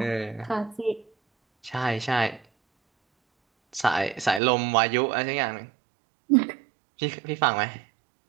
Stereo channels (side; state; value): left; drops out; at 4.4 s